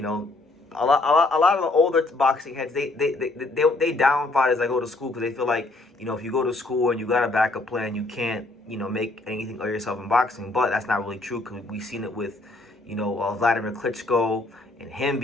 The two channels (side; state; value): right; quieter; 3.1 dB